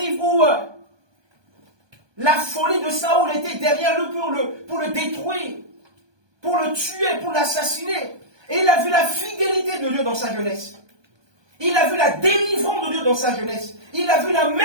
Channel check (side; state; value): left; late; 1.2 ms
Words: où la folie de Saoul était derrière lui pour le détruire, pour le tuer, pour l'assassiner. Et il a vu la fidélité de Dieu dans sa jeunesse. Il a vu la délivrance de Dieu dans sa jeunesse. Il a vu la